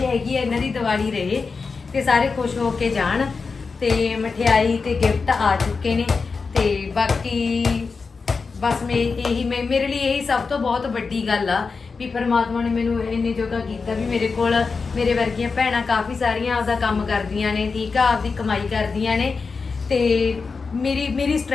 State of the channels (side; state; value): right; quieter; 4.7 dB